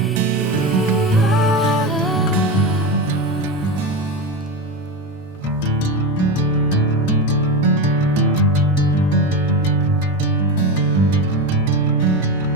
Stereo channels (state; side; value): normal; both; correlation 0.18